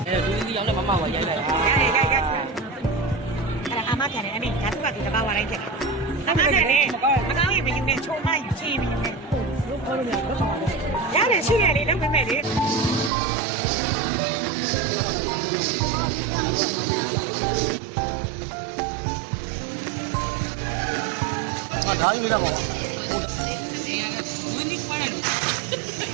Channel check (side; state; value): left; drops out; at 13.1 s